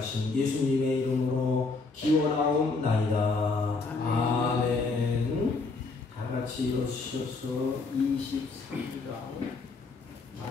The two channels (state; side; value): quieter; right; 3.9 dB